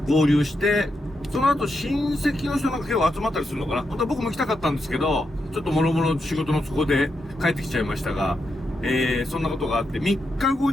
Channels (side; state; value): both; normal; correlation 0.84